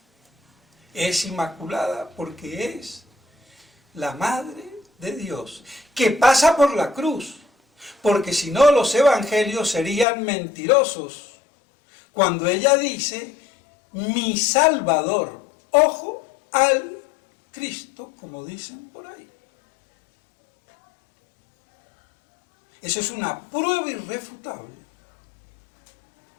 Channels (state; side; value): drops out; right; at 10.1 s